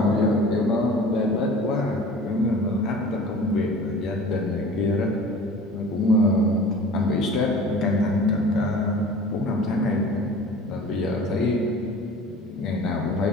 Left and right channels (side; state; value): both; normal; correlation 0.42